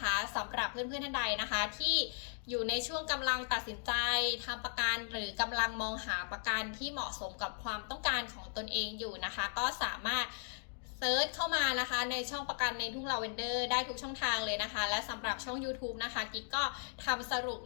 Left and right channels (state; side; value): silent; right; digital silence